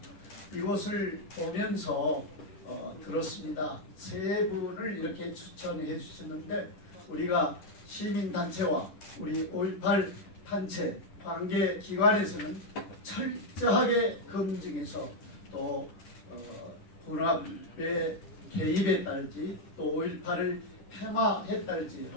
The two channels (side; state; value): right; late; 10 ms